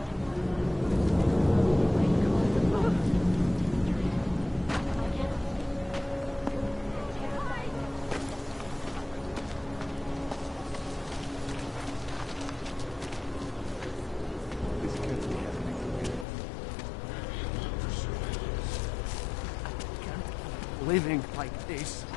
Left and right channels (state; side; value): drops out; right; at 16.2 s